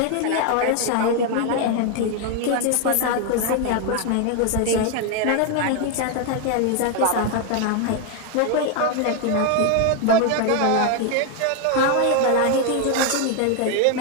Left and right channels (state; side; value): different; both; correlation 0.01